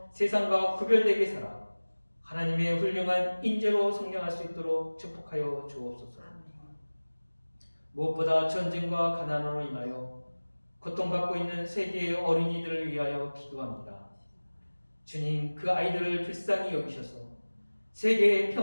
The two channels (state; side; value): inverted; both; correlation -1.00